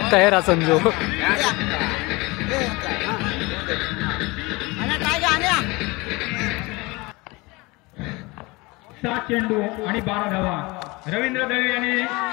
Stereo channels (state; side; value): quieter; right; 24.2 dB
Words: तयार असन जो. 7 चेंडू आणि 12 धावा. रवींद्र दळवी यांनी